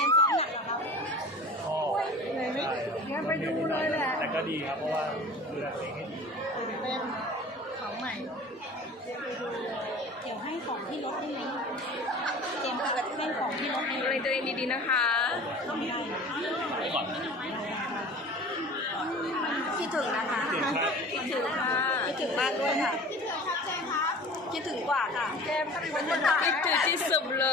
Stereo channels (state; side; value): normal; both; correlation 0.40